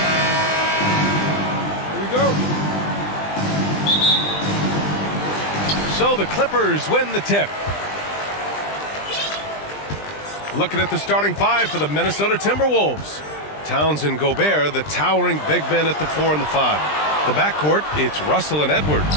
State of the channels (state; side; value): late; right; 20 ms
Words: we go. So the Clippers win the tip. Looking at the starting five for the Minnesota Timberwolves. Towns and Gobert, the towering big men at the 4 and the 5. The backcourt, it's Russell and Edwards.